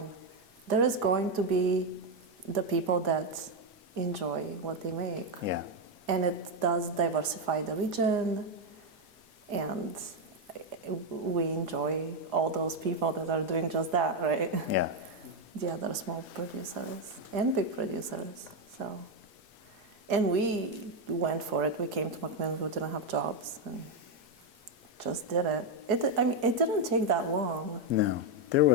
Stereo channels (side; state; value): both; normal; correlation 0.04